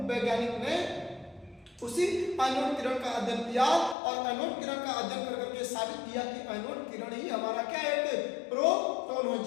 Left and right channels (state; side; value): drops out; right; at 4.0 s